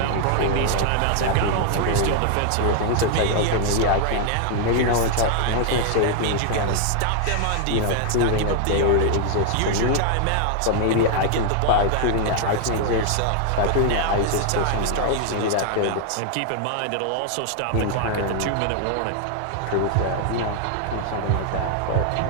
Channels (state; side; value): different; both; correlation 0.00